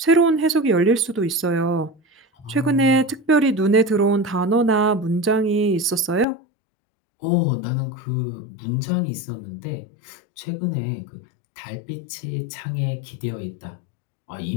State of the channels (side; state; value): right; drops out; at 6.2 s